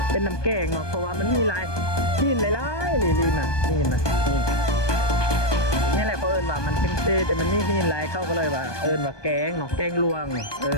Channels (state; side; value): late; right; 1.2 ms